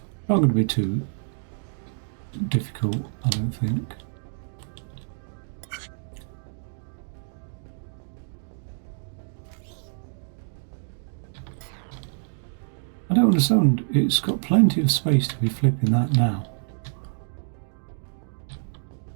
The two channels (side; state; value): left; silent; digital silence